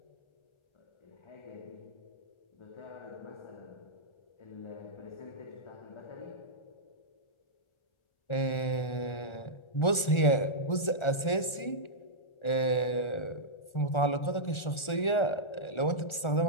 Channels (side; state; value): right; late; 1.4 ms